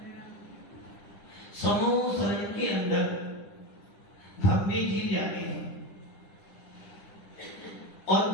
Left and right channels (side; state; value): right; late; 10 ms